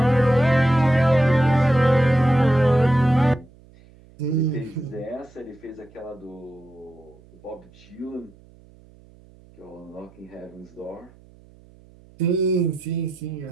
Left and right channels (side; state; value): right; noise; hum, 26 dB below the sound